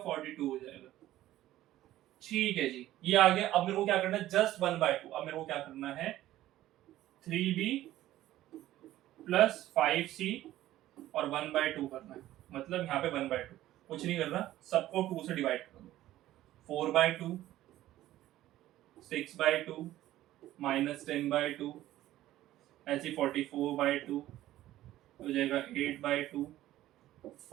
हो जाएगा। ठीक है जी, ये आ गया। अब मेरे को क्या करना है, जस्ट 1/2। अब मेरे को क्या करना है, 3B प्लस 5C और 1/2 करना है, मतलब यहाँ पे 1/2, कुछ नहीं करना, सबको 2 से डिवाइड कर दो, 4/2, 6/2 -10/2, ऐसे 44/2 हो जाएगा, 8/2,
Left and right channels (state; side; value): quieter; left; 14.4 dB